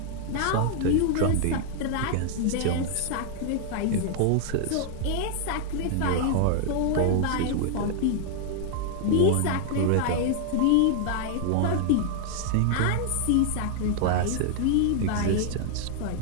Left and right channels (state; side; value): different; both; correlation 0.00